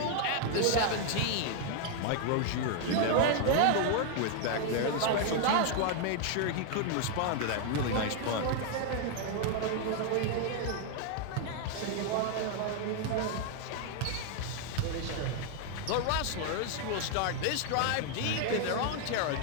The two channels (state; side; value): different; both; correlation 0.00